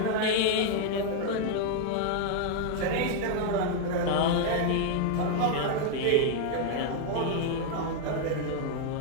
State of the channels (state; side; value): different; both; correlation 0.00